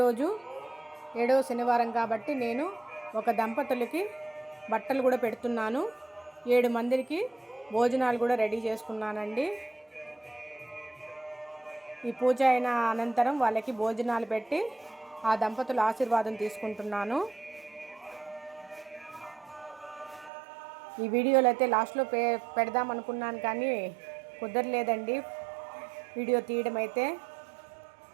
7వ శనివారం కాబట్టి నేను ఒక దంపతులకి బట్టలు కూడా పెడుతున్నాను. 7 మందికి భోజనాలు కూడా రెడీ చేసుకున్నానండి. ఈ పూజ అయిన అనంతరం వాళ్ళకి భోజనాలు పెట్టి ఆ దంపతుల ఆశీర్వాదం తీసుకుంటున్నాను. ఈ వీడియోలో అయితే లాస్ట్లో పెడదాం అనుకున్నాను కానీ కుదరలేదండి వీడియో తీయడం అయితే.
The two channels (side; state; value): left; drops out; at 20.3 s